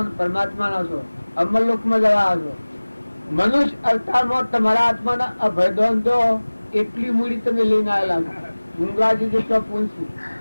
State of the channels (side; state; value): both; inverted; correlation -1.00